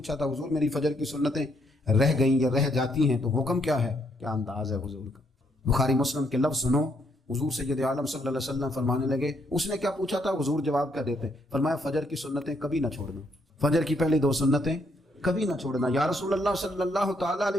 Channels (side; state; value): both; normal; correlation 0.73